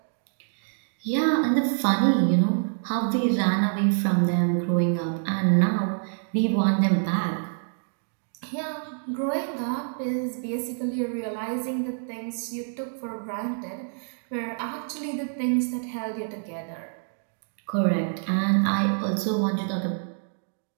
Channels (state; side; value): silent; left; digital silence